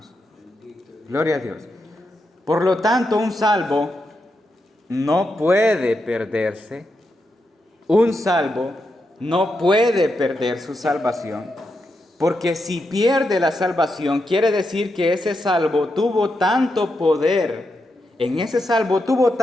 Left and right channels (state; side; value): normal; both; correlation 0.85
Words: Gloria a Dios. Por lo tanto, un salvo no puede perderse. Un salvo no puede perder su salvación. Porque si pierde la salvación, quiere decir que ese salvo tuvo tanto poder. En ese salvo tuvo